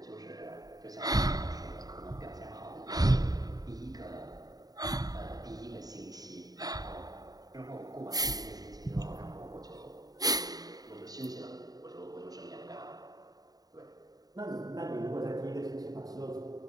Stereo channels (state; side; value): late; left; 0.18 ms